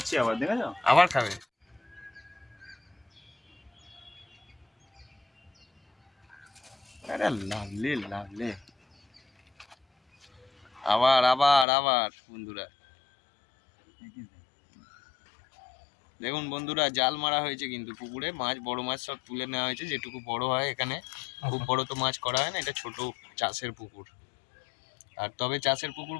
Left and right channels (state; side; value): drops out; right; at 11.7 s